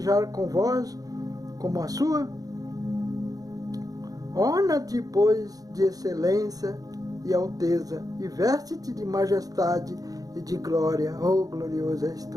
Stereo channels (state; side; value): late; left; 0.18 ms